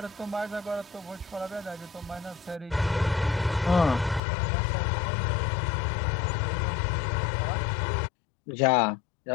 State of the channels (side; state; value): right; drops out; at 4.2 s